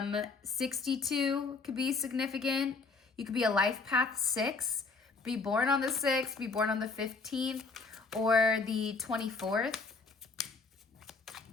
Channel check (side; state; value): right; quieter; 4.2 dB